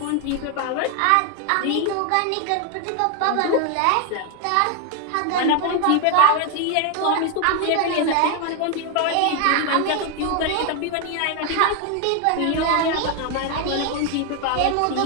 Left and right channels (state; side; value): different; both; correlation 0.01